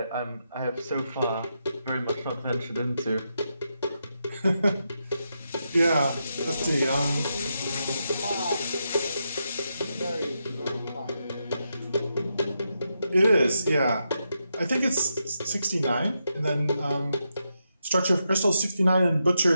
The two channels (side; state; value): both; inverted; correlation -0.85